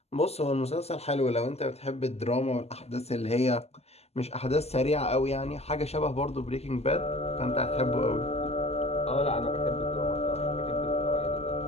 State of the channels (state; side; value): late; right; 0.30 ms